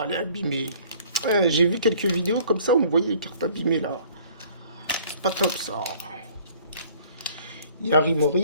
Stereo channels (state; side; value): inverted; both; correlation -0.55